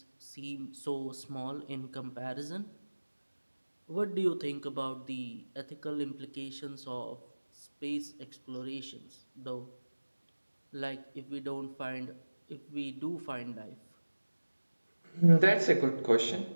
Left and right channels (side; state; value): both; inverted; correlation -1.00